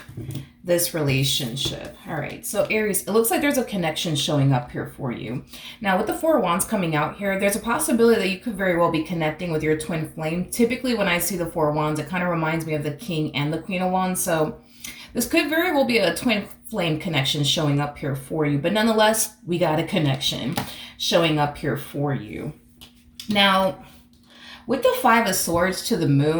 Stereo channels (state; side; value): identical; both; correlation 1.00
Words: this relationship? All right, so Aries, it looks like there's a connection showing up here for you. Now, with the Four of Wands coming out here, there's a possibility that you could very well be connecting with your twin flame. Typically, when I see the Four of Wands, it kind of reminds me of the King and the Queen of Wands. So this could very well be a twin flame connection showing up here for you. But nonetheless, we got a connection showing up here for you. Now, with the Five of Swords to the